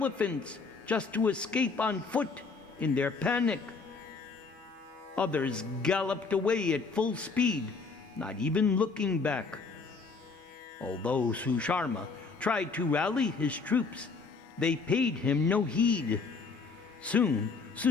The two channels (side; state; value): right; quieter; 4.5 dB